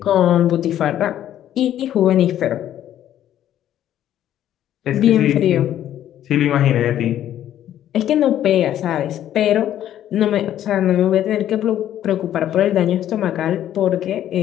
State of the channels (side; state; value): right; quieter; 11.5 dB